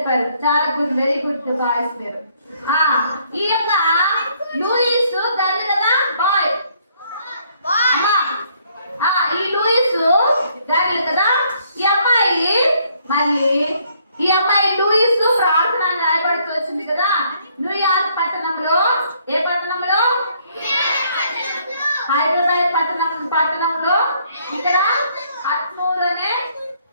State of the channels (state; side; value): inverted; both; correlation -0.67